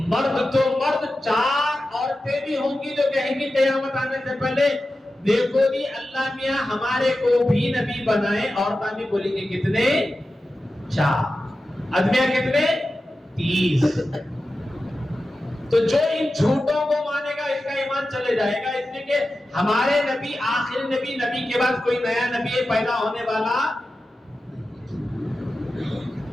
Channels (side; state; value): both; normal; correlation 0.93